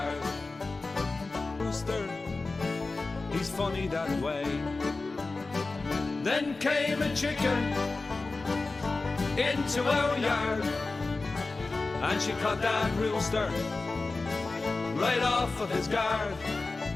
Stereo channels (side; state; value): right; quieter; 3.6 dB